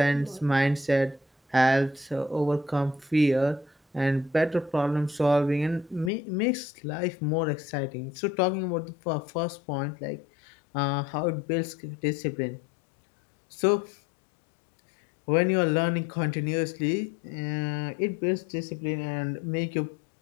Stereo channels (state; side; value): drops out; right; at 6.1 s